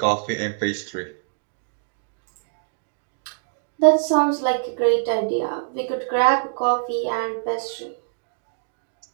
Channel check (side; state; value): left; silent; digital silence